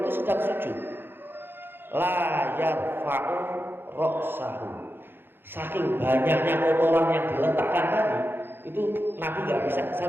sedang sujud. La yarfa'u ra'sahu. Saking banyaknya kotoran yang diletakkan tadi, itu Nabi nggak bisa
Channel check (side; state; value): left; late; 0.10 ms